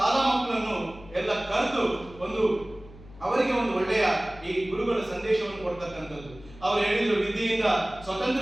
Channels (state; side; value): noise; left; hum, 20 dB below the sound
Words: ಮಕ್ಕಳನ್ನು ಎಲ್ಲ ಕರೆದು ಒಂದು ಅವರಿಗೆ ಒಂದು ಒಳ್ಳೆಯ ಈ ಗುರುಗಳ ಸಂದೇಶವನ್ನು ಕೊಡ್ತಕ್ಕಂಥದ್ದು. ಅವರು ಹೇಳಿದ್ರು ವಿದ್ಯೆಯಿಂದ